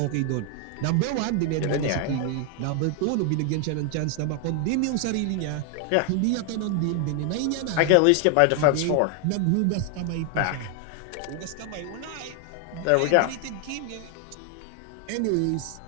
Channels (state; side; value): different; both; correlation 0.00